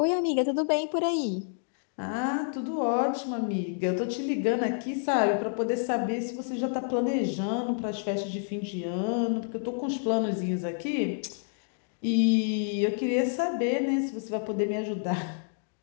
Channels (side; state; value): right; silent; digital silence